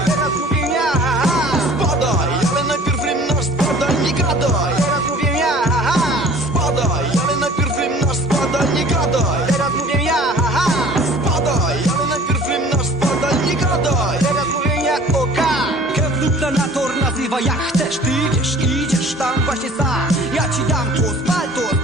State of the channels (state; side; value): normal; both; correlation 0.48